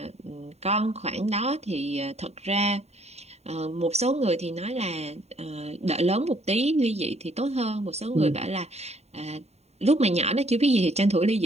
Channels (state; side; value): late; left; 0.31 ms